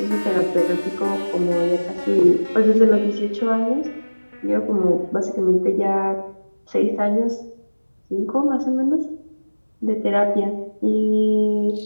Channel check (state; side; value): inverted; both; correlation -1.00